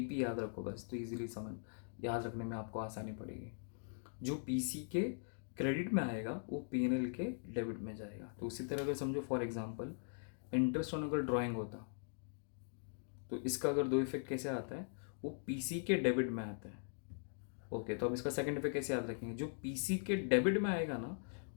याद रखो बस, तो इजीली समझ याद रखने में आपको आसानी पड़ेगी। जो पीसी के क्रेडिट में आएगा वो पीएनएल के डेबिट में जाएगा। तो उसी तरह अगर समझो फॉर एग्जांपल इंटरेस्ट ऑन अगर ड्राइंग होता, तो इसका अगर दो इफेक्ट कैसे आता है, वो पीसी के डेबिट में आता है। ओके, तो अब इसका सेकंड इफेक्ट कैसे याद रखेंगे, जो पीसी के डेबिट में आएगा ना,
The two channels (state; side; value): silent; right; digital silence